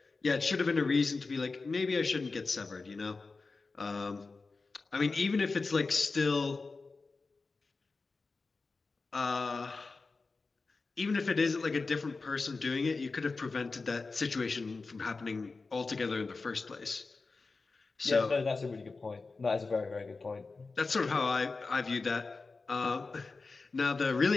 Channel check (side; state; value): right; quieter; 4.0 dB